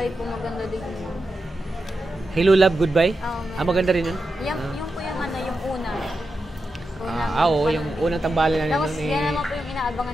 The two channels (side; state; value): both; normal; correlation 0.89